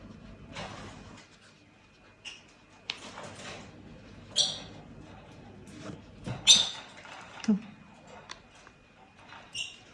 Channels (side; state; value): both; identical; correlation 1.00